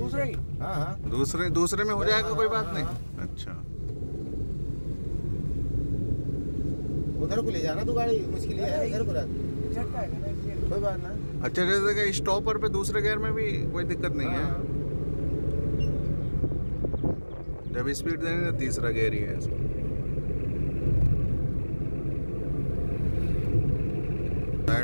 की। हाँ दूसरे में हो जाएगा, कोई बात हाँ, नहीं। अच्छा, उधर को ले जाना तू गाड़ी, मुश्किल है इधर को रख, झटका है ना इसलिए। कोई बात ना। अच्छा, जैसे कि स्टॉपर पे दूसरे गियर में भी कोई दिक्कत नहीं है। हाँ। जब स्पीड देंगे तो तीसरा गियर ही है इसमें।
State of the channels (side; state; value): both; inverted; correlation -1.00